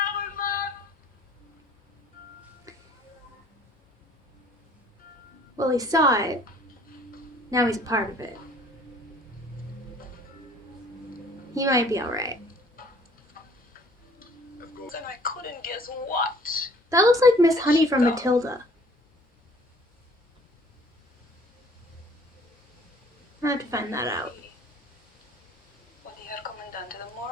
Well, he saw it. Now he's a part of it. He might be alright. And I couldn't guess what. That looks like Miss Honey from Matilda. I have to find that out. When you are Commandante, the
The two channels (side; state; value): both; normal; correlation 0.55